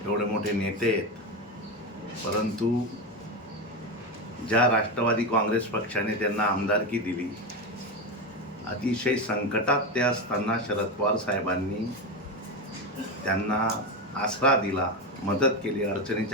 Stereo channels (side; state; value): both; normal; correlation 0.15